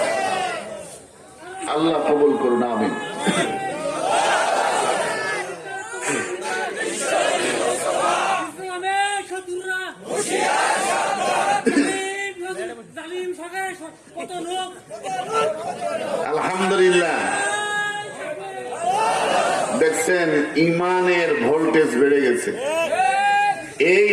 আল্লাহ কবুল করুন, আমিন। আলহামদুলিল্লাহ, দেখছেন ইমানের ভোল্টেজ বেড়ে গেছে। এই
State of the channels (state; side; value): identical; both; correlation 1.00